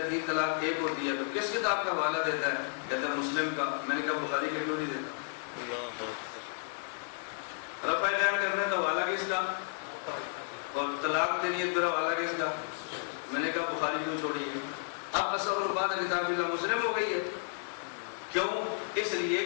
3 طلاق 1 ہوتی ہے تو کس کتاب کا حوالہ دیتا ہے؟ کہتا ہے مسلم کا۔ میں نے کہا بخاری کا کیوں نہیں دیتا؟ رفع دین کرنا تو حوالہ کس کا، اور طلاق دینی ہے تو حوالہ کس کا؟ میں نے کہا بخاری کیوں چھوڑی ہے؟ اب اصل الباد کتاب اللہ مسلم ہو گئی ہے۔ کیوں؟ اس لیے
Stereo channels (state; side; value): silent; right; 56 dB below the other